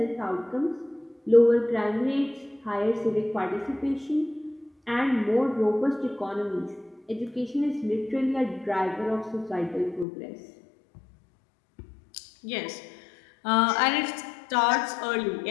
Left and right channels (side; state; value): right; drops out; at 10.1 s